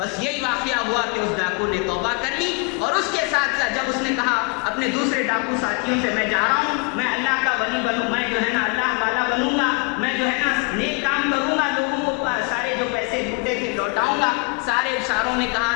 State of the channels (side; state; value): right; quieter; 31.3 dB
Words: یہی واقعہ ہوا کہ اس ڈاکو نے توبہ کر لی. اور اس کے ساتھ ساتھ جب اس نے کہا اپنے دوسرے ڈاکو ساتھیوں سے میں جا رہا ہوں، میں اللہ کا ولی بنوں، میں جو ہے نا اللہ والا بنوں گا، میں جو ہے نا نیک کام کروں گا، لوگوں کو سارے جو پیسے لوٹے تھے لوٹاؤں گا. ساروں نے کہا